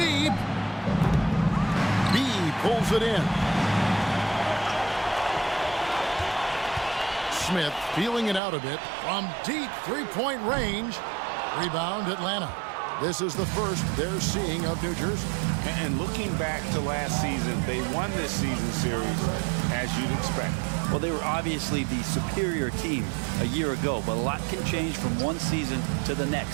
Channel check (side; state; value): left; drops out; at 8.4 s